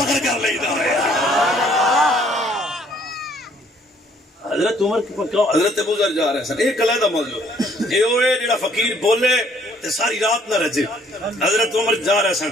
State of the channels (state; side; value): normal; both; correlation 0.62